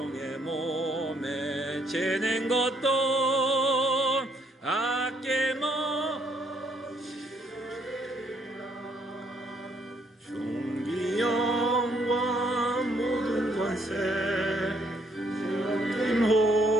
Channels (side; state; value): both; normal; correlation 0.69